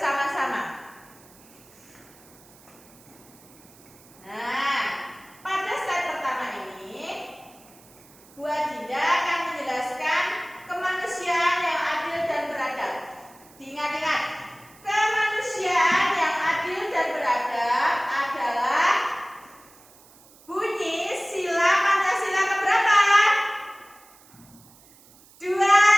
Nah, pada slide pertama ini Bu Adinda akan menjelaskan kemanusiaan yang adil dan beradab. Diingat-ingat, kemanusiaan yang adil dan beradab adalah bunyi sila Pancasila keberapa? 2,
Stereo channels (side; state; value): right; noise; hiss, 25 dB below the sound